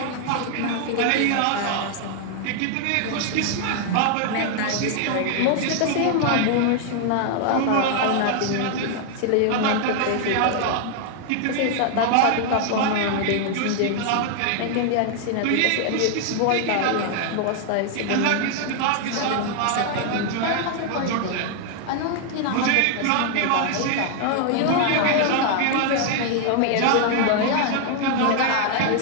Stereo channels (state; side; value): different; both; correlation 0.00